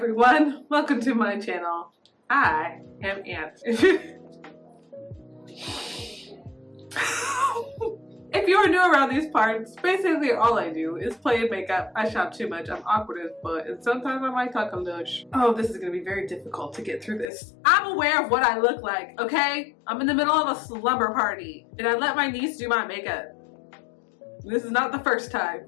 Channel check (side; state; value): right; drops out; at 17.3 s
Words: everyone, welcome to my channel. I am Ant. If you are new around these parts, basically all I do is play in makeup. I shop too much, I'm awkward as fuck, and sometimes I might talk a lush. Oh, this is gonna be very difficult to get through this. I'm aware of what I look like, okay? I'm in the middle of a slumber party, and I let my niece do my makeup. This is not the first